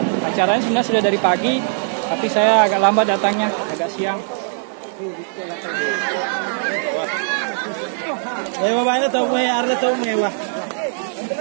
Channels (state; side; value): silent; left; digital silence